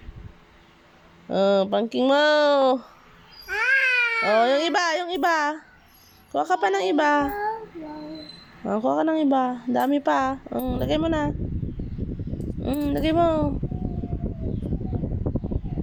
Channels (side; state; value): both; identical; correlation 1.00